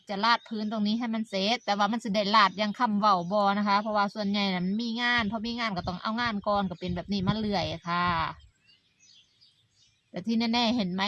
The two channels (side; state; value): both; identical; correlation 1.00